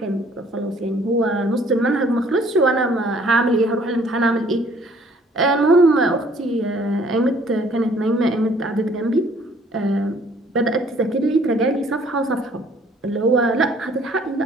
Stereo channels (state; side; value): normal; both; correlation 0.59